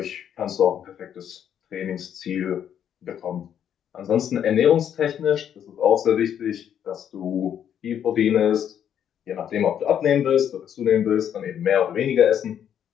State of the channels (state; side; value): quieter; right; 9.3 dB